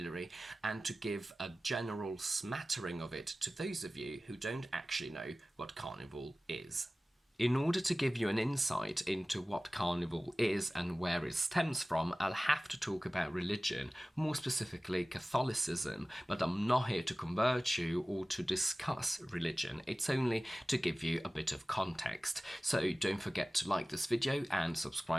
and to give a general smattering of it to those of you who don't actually know what Carnival is. In order to give you an insight into what Carnival is and where it stems from, I'll have to talk about religion, more specifically Catholicism, but I'm not here to convert you or to discuss religion. It's only to give you a bit of context. So don't forget to like this video and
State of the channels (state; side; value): normal; both; correlation 0.97